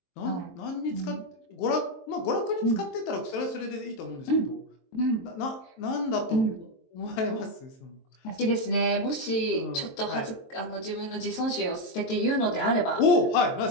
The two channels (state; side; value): late; right; 23 ms